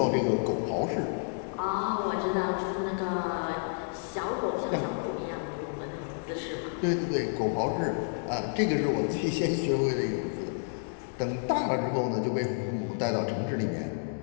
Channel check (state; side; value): silent; right; digital silence